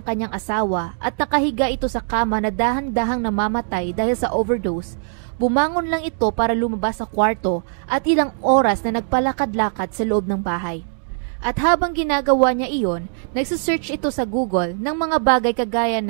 kanyang asawa at nakahiga ito sa kama na dahan-dahang namamatay dahil sa overdose, bumangon lang ito para lumabas sa kwarto at ilang oras na nagpalakad-lakad sa loob ng bahay. At habang ginagawa niya iyon, nagsisearch ito sa Google ng mga bagay kagaya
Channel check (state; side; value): silent; left; digital silence